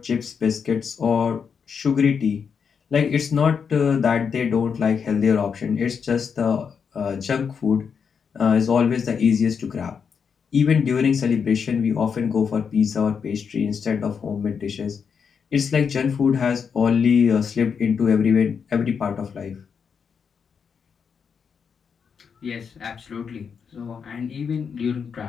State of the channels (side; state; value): right; quieter; 6.5 dB